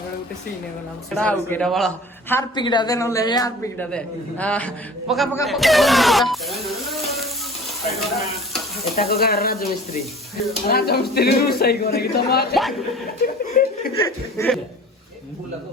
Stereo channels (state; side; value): normal; both; correlation 0.44